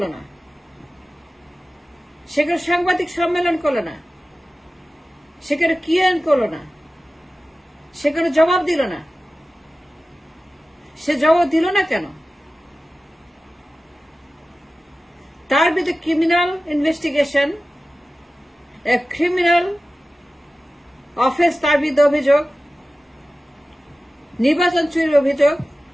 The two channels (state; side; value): normal; both; correlation 0.95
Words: না, সেখানে সাংবাদিক সম্মেলন করলো না, সেখানে কিয়ান করলো না, সেখানে জবাব দিল না। সে জবাব দিল না কেন? তার বিরুদ্ধে ক্রিমিনাল ইনভেস্টিগেশন, ক্রিমিনাল অফেন্স, তার বিরুদ্ধে অভিযোগ, নির্বাচন চুরির অভিযোগ,